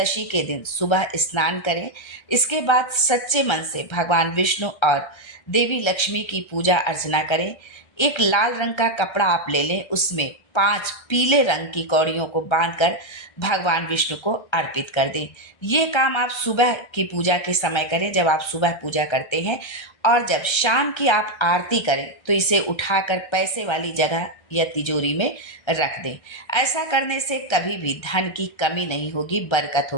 के दिन सुबह स्नान करें। इसके बाद सच्चे मन से भगवान विष्णु और देवी लक्ष्मी की पूजा अर्चना करें। एक लाल रंग का कपड़ा आप ले लें, उसमें 5 पीले रंग की कौड़ियों को बांधकर भगवान विष्णु को अर्पित कर दें। ये काम आप सुबह की पूजा के समय करें, जब आप सुबह पूजा करते हैं, और जब शाम की आप आरती करें तो इसे उठाकर पैसे वाली जगह या तिजोरी में रख दें। ऐसा करने से कभी भी धन की कमी नहीं होगी, बरकत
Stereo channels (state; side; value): late; right; 1.3 ms